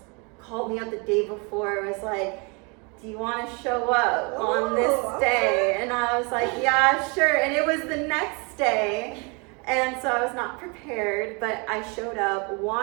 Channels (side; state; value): left; quieter; 31.7 dB